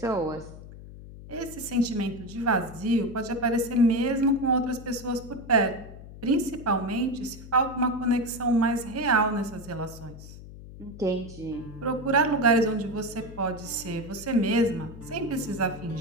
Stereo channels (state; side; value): noise; left; hum, 15 dB below the sound